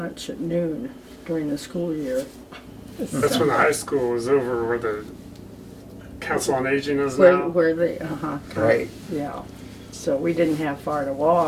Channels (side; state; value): both; identical; correlation 1.00